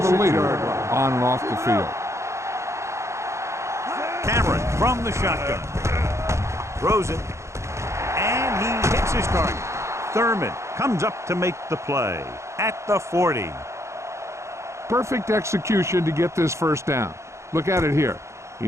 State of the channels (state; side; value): late; left; 0.14 ms